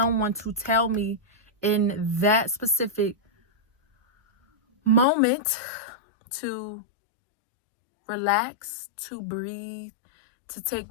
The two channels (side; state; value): right; drops out; at 5.1 s